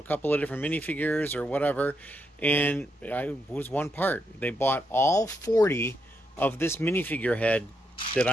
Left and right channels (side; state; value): both; normal; correlation 0.81